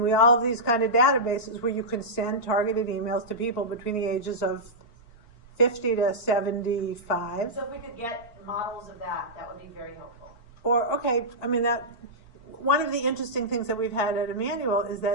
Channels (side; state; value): right; late; 4.4 ms